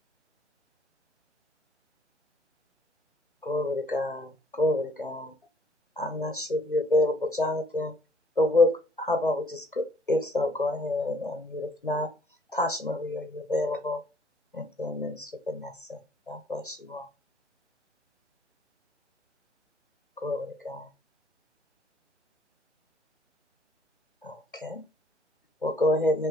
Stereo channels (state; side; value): normal; both; correlation 0.61